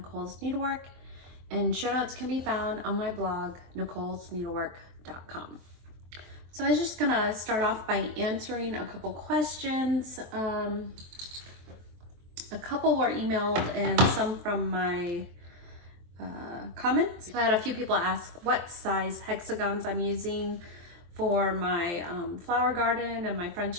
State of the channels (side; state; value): left; late; 23 ms